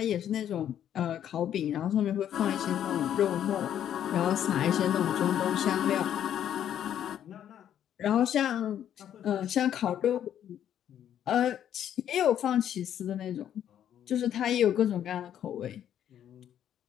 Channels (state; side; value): quieter; right; 10.2 dB